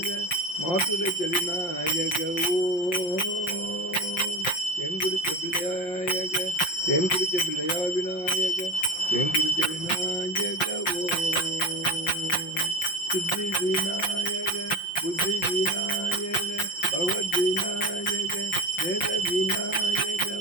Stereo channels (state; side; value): late; right; 5.6 ms